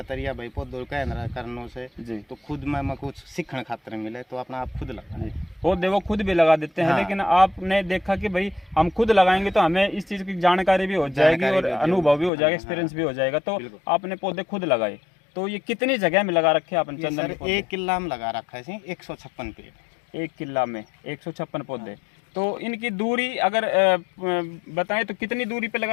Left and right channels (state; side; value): drops out; right; at 12.3 s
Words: तरीका भाई पौधों कहना करने से जी। तो खुद में कुछ सीखने खातिर मिले तो अपना आप खुद लगा पौधे वो खुद भी लगा देते हैं। हाँ। लेकिन आपने देखा कि भाई हम खुद लगाएंगे तो हमें इस चीज़ की जानकारी भी हो जाएगी और अनुभव भी हो जाएगा, एक्सपीरियंस भी हो जाएगा। तो आपने पौधे खुद लगाए। तो ये कितनी जगह में लगा रखे आपने चंदन के पौधे? 1 किला में लगा रखा है 156 पेड़। 1 किला में 156 पौधे। तो इनकी दूरी अगर बताएं तो कितनी दूरी पे